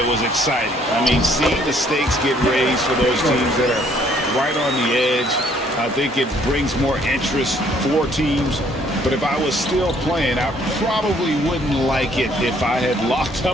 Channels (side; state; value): both; normal; correlation 0.63